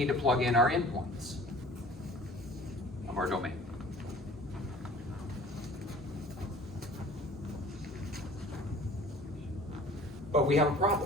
to plug in our endpoints of our domain. But we have a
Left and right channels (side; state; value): both; normal; correlation 0.47